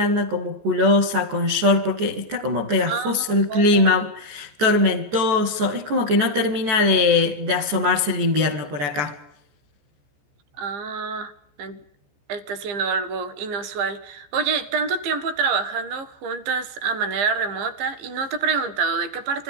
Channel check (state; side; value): late; left; 14 ms